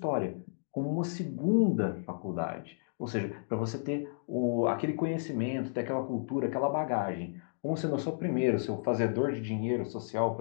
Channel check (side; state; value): right; silent; digital silence